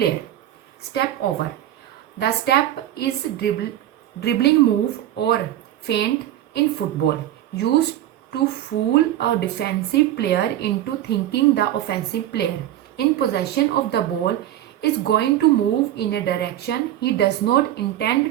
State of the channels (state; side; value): quieter; left; 12.6 dB